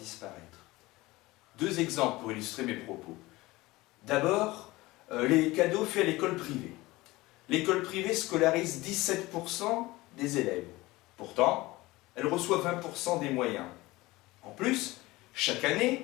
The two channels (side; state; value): right; quieter; 20.0 dB